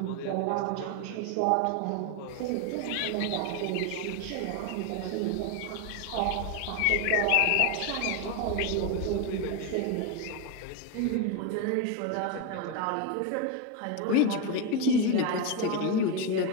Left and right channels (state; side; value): different; both; correlation 0.02